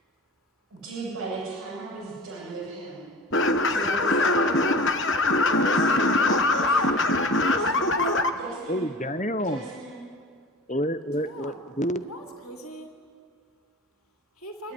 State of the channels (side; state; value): both; normal; correlation 0.38